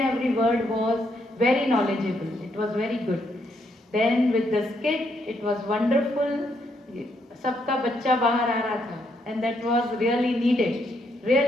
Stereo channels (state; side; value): normal; both; correlation 0.75